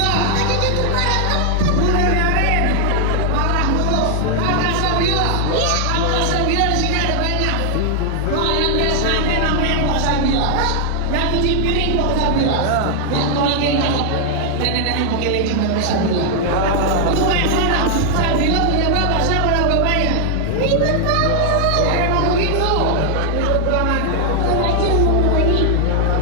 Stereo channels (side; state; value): both; different; correlation 0.00